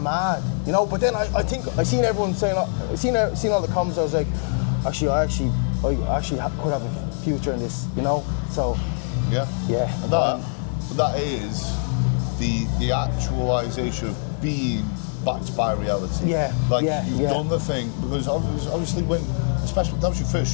you know. But then I think I seen everyone saying, seen all the comments. I was like, I actually could have a future in this, you know. So yeah. And that is the actualization of being backed by reality. Yeah. You've done the thing because obviously especially that was your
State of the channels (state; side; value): silent; right; 60 dB below the other